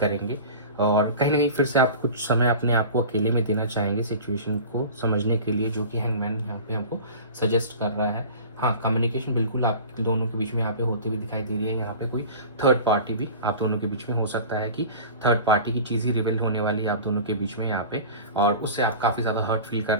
और कहीं ना कहीं फिर से आप कुछ समय अपने आप को अकेले में देना चाहेंगे सिचुएशन को समझने के लिए, जो कि हैंगमैन यहाँ पे हमको सजेस्ट कर रहा है। हाँ, कम्युनिकेशन बिल्कुल आप दोनों के बीच में यहाँ पे होते हुए दिखाई दे रही है। यहाँ पे कोई थर्ड पार्टी भी आप दोनों के बीच में हो सकता है कि थर्ड पार्टी की चीज़ ही रिवील होने वाली है आप दोनों के बीच में यहाँ पे, और उससे आप काफ़ी ज़्यादा हर्ट फील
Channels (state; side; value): inverted; both; correlation -0.37